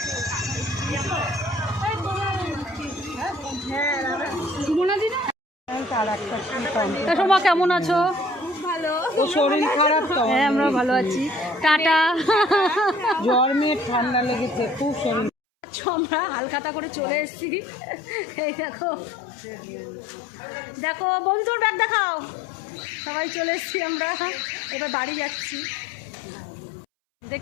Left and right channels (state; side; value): drops out; right; at 15.3 s